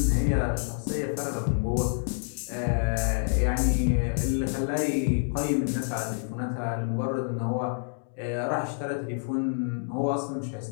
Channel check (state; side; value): silent; right; digital silence